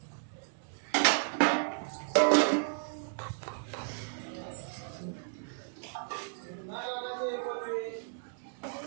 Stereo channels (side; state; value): left; silent; digital silence